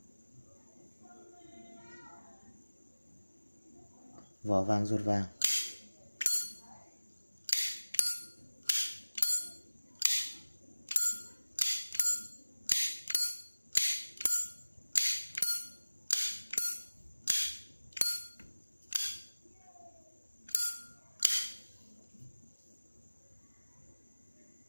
Vỏ vàng ruột vàng.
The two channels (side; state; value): both; inverted; correlation -1.00